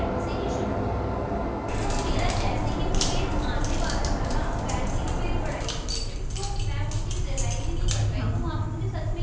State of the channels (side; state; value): both; identical; correlation 1.00